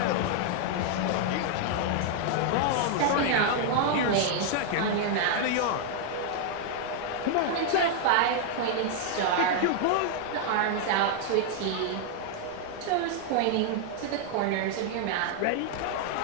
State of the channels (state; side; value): different; both; correlation 0.00